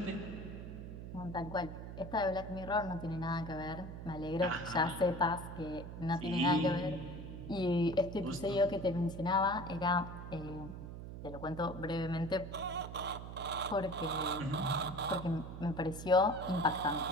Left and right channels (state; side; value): noise; right; hum, 9 dB below the sound